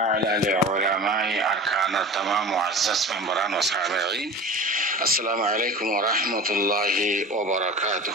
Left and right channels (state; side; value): normal; both; correlation 0.36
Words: لعلماء أركان التمام معزز ممبران وسامعين السلام عليكم ورحمة الله